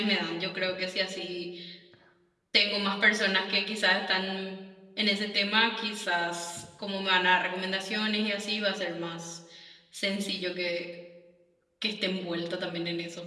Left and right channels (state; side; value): identical; both; correlation 1.00